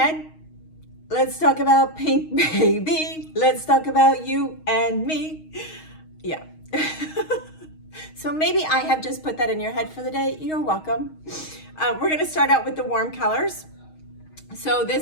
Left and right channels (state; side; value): late; right; 6.4 ms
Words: let's talk about pink, baby. Let's talk about you and me. Yeah. So maybe I have just put that in your head for the day. You're welcome. We're going to start out with the warm colors. So